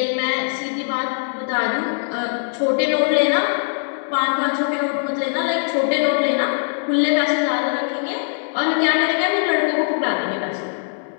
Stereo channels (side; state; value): right; silent; digital silence